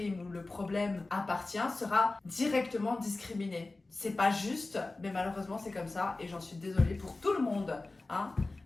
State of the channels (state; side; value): quieter; right; 3.2 dB